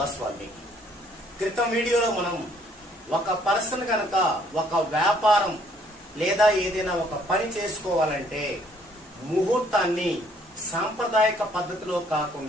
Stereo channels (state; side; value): normal; both; correlation 0.64